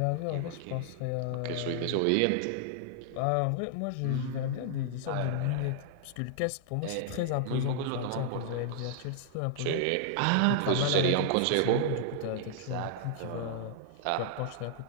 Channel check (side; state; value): both; different; correlation -0.01